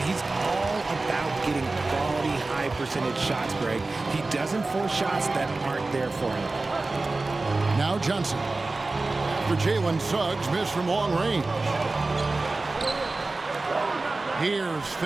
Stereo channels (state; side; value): quieter; left; 3.3 dB